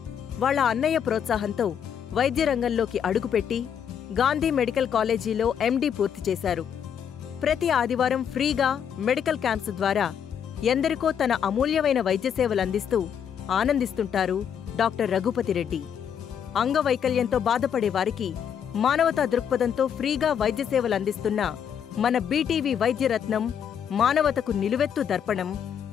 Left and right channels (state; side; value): quieter; right; 8.3 dB